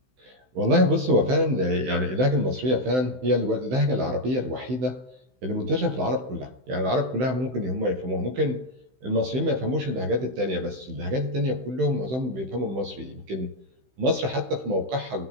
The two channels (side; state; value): left; late; 16 ms